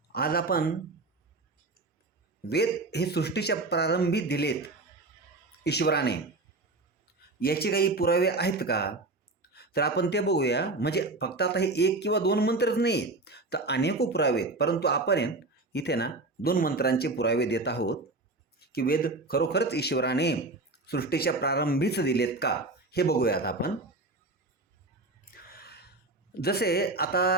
आज आपण वेद हे सृष्टीच्या प्रारंभी दिलेत ईश्वराने, याचे काही पुरावे आहेत का? तर आपण ते बघूया. म्हणजे फक्त आता हे एक किंवा दोन मंत्रच नाही, तर अनेको पुरावे आहेत. परंतु आपण इथे ना दोन मंत्रांचे पुरावे देत आहोत की वेद खरोखरच ईश्वराने सृष्टीच्या प्रारंभीच दिलेत का, हे बघूयात आपण. जसे आता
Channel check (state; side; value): quieter; left; 3.1 dB